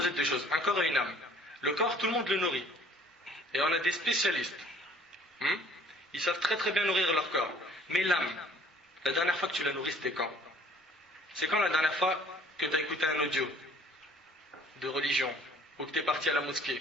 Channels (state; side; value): normal; both; correlation 0.56